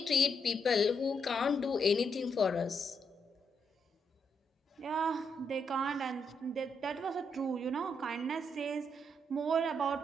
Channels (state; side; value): normal; both; correlation 0.78